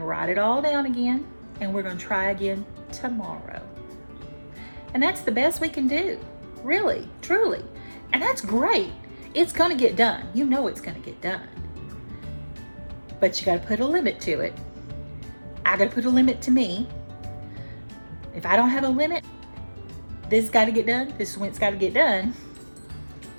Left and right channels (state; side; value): inverted; both; correlation -1.00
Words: write it all down again, and we're going to try again tomorrow. And that's the best we can do, really, truly. And that's great. It's going to get done. You know it's going to get done. But you got to put a limit to it. I got to put a limit to me. If I don't have a limit, this has got to get done. This is when it's got to get done.